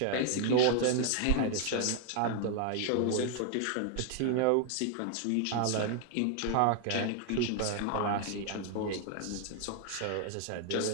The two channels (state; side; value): different; both; correlation 0.00